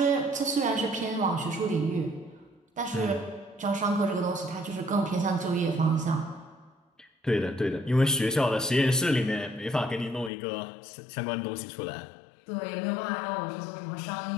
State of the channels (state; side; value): drops out; right; at 10.3 s